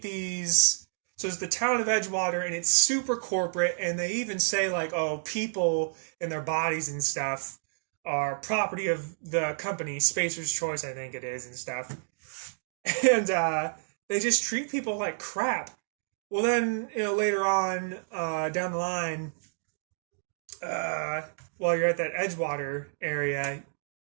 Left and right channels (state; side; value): silent; left; digital silence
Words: these. So it's the town of Edgewater, and it's super corporate, and they even say like, oh, people and their bodies and stuff are property of the company, Spacer's Choice, I think it is, and stuff. And they just treat people like crap. Well, then, later on down the line, while you're at that Edgewater area,